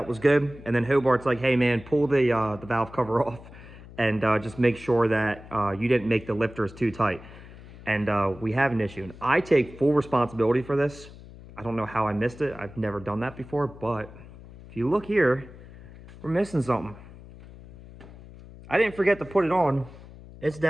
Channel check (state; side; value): noise; left; hum, 18 dB below the sound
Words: was good. And then Hobart's like, hey man, pull the valve cover off and just make sure that you didn't make the lifters too tight. And we have an issue, and I take full responsibility for this. I don't know how I missed it. I've never done that before, but if you look here, we're missing something. I didn't forget to put it on. It's